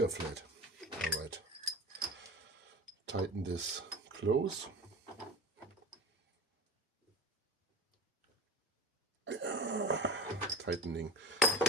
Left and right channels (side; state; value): both; normal; correlation 0.31